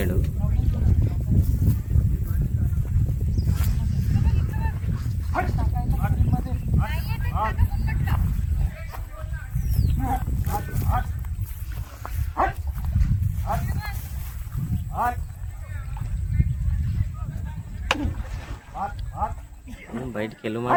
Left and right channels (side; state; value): both; identical; correlation 1.00